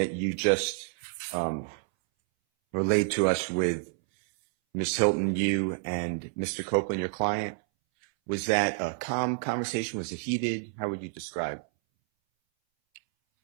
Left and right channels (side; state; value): left; silent; 59 dB below the other